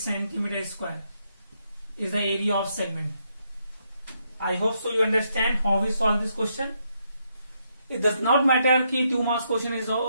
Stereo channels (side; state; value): both; inverted; correlation -0.77